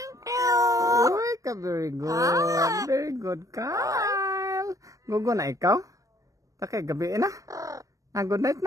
Uy, very good. Very good, Kyle. Gugo na ikaw? Takay, gabi na. Good night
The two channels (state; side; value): late; left; 0.16 ms